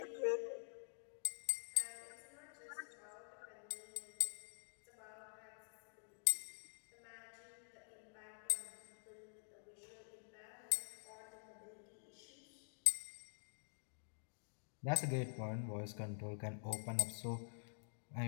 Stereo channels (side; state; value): right; silent; digital silence